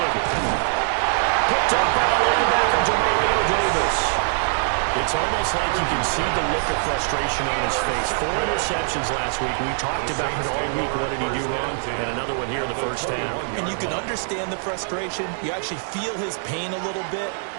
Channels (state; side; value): silent; left; digital silence